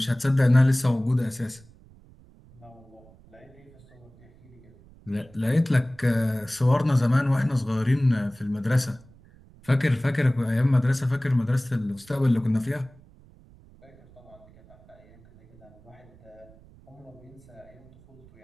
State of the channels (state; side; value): noise; right; rumble, 25 dB below the sound